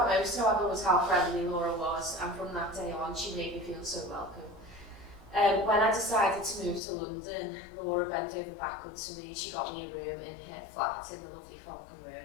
most, however, was how friendly Laura was, and from that day on, she made me feel so welcome. When I decided to move to London, Laura bent over backwards for me. She got me a room in her flat in the lovely Falcon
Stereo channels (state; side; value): drops out; right; at 6.8 s